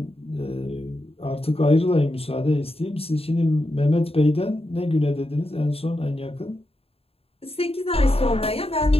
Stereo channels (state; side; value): late; right; 0.28 ms